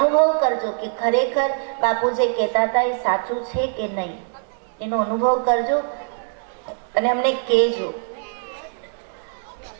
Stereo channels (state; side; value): silent; left; digital silence